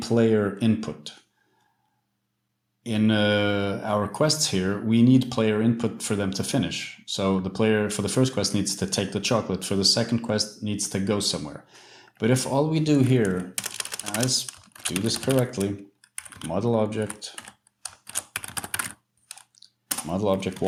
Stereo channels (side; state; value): both; identical; correlation 1.00